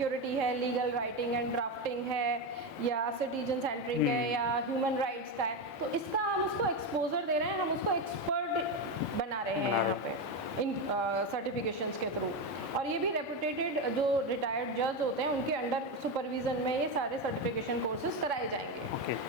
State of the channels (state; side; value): normal; both; correlation 0.13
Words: है, लीगल राइटिंग एंड ड्राफ्टिंग है, या सिटीजन सेंटरिंग है, या ह्यूमन राइट्स का है। तो इसका हम उसको एक्सपोजर दे रहे हैं, हम उसको एक्सपर्ट बना रहे हैं यहाँ पे इन सर्टिफिकेशंस के थ्रू। और ये भी रेपुटेटेड जो रिटायर्ड जज होते हैं उनके अंडर सुपरविजन में ये सारे सर्टिफिकेशन कोर्सेज कराए जाएंगे